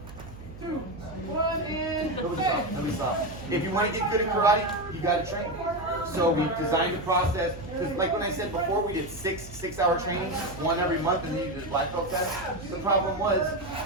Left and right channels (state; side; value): noise; right; hum, 15 dB below the sound